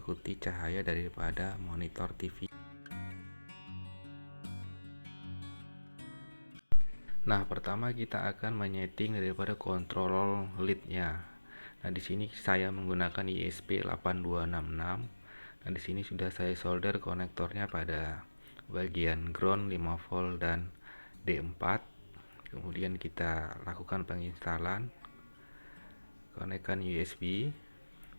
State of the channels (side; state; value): both; inverted; correlation -1.00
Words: cahaya daripada monitor TV. Nah, pertama kita akan menyeting daripada kontrol leadnya. Nah, di sini saya menggunakan ISP8266. Nah, di sini sudah saya solder konektornya pada bagian ground 5 volt dan D4. Kemudian kita lakukan penginstalan, konekkan USB